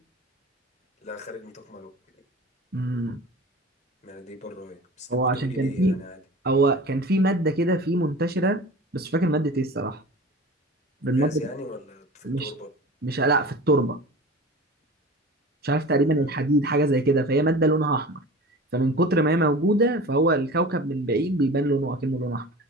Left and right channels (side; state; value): both; normal; correlation 0.37